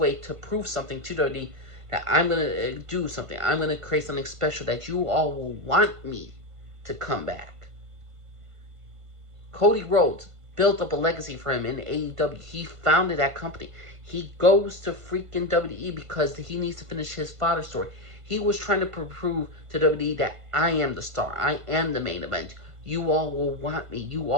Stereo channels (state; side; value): late; left; 1.5 ms